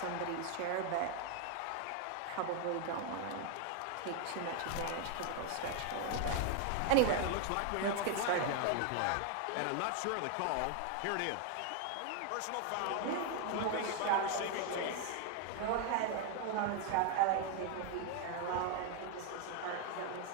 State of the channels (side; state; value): both; different; correlation 0.00